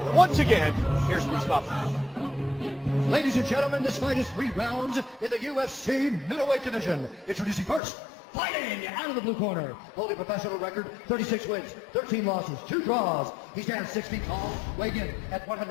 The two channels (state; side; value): drops out; right; at 7.8 s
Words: Once again, here's Bruce Buffalo. Ladies and gentlemen, this fight is 3 rounds in the UFC middleweight division. Introducing first, fighting out of the blue corner, holding professional record, 36 wins, 13 losses, 2 draws. He stands 6 feet tall, weighing in at